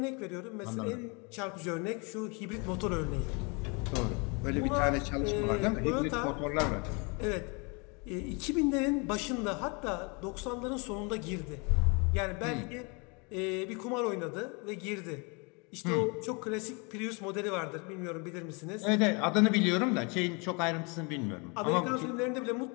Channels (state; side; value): quieter; right; 31.6 dB